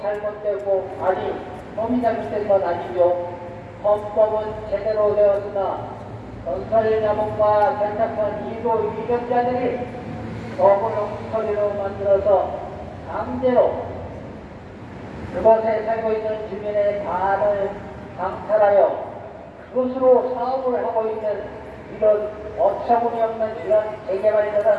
잘못되고, 아니, 법이 잘못된 건 아니죠. 헌법은 제대로 되었으나 건설자본과 결탁한 일부 위력자들이 법을 엉터리로 만들어서 강제로 그곳에 살고 있는 주민의 반을 강탈하여 그것으로 사업을 하고 있는 이런 어처구니없는 이런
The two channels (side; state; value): both; identical; correlation 1.00